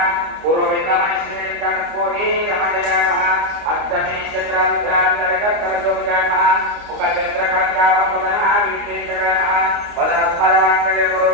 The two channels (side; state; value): left; late; 29 ms